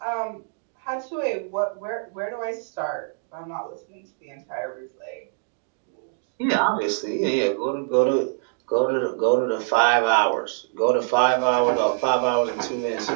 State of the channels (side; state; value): left; silent; digital silence